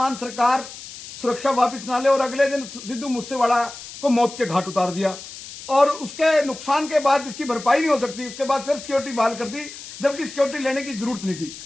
सरकार सुरक्षा वापस ना ले और अगले दिन सिद्धू मूसेवाला को मौत के घाट उतार दिया और उसके नुकसान के बाद जिसकी भरपाई नहीं हो सकती, उसके बाद फिर सिक्योरिटी बहाल कर दी, जबकि सिक्योरिटी लेने की जरूरत नहीं थी।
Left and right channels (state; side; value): noise; left; hiss, 14 dB below the sound